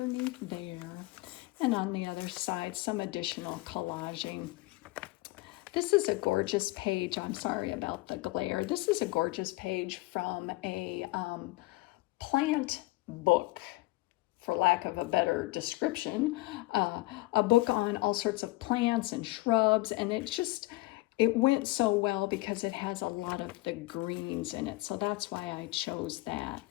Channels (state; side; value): quieter; right; 20.8 dB